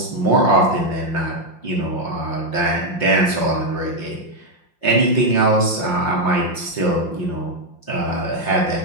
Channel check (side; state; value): right; late; 5.7 ms